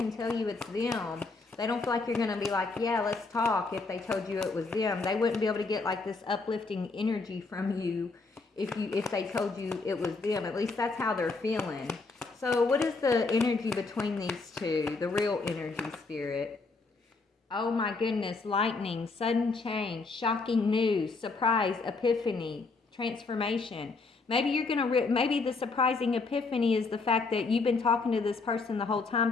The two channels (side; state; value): right; quieter; 3.9 dB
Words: tell you it's them. They don't feel like you're going to be like, yeah, let's talk if they told you it was them. They wouldn't be able to get like this uplifting energy from you if they told you it was them. At least that's how they're feeling. So what is the energy between these two? The real energy, Spirit. Oh my goodness. Lightning, sudden change, shocking news, surprise, epiphany, transformation. Maybe you're going to, maybe the surprising epiphany is the fact that you've been talking to this person the whole